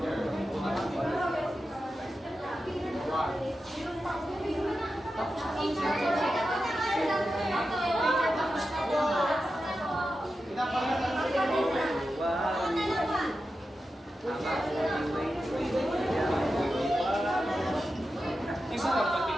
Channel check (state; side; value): normal; both; correlation 0.91